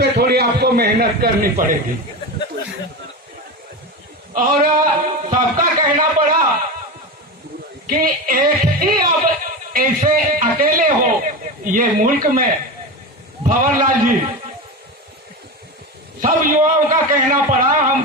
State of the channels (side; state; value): both; normal; correlation 0.22